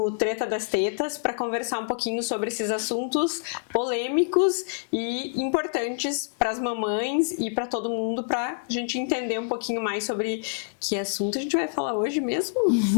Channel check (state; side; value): silent; right; 61 dB below the other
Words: Treta das Tetas para conversar um pouquinho sobre esses assuntos polêmicos e importantes para as mamães e para todo mundo, para a gente entender um pouquinho mais sobre que assunto a gente vai falar hoje mesmo.